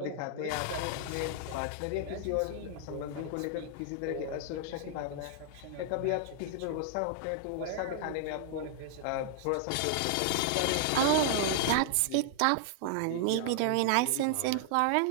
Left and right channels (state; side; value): different; both; correlation -0.01